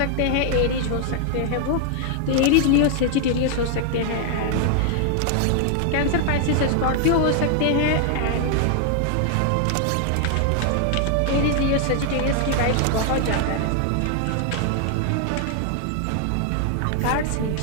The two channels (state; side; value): different; both; correlation 0.00